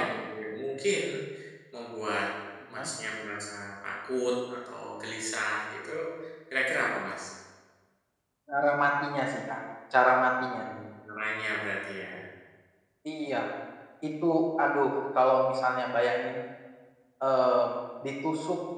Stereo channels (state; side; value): identical; both; correlation 1.00